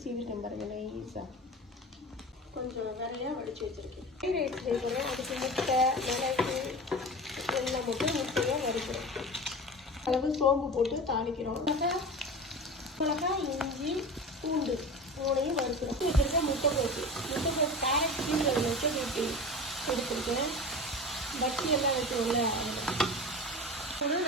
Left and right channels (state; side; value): normal; both; correlation 0.32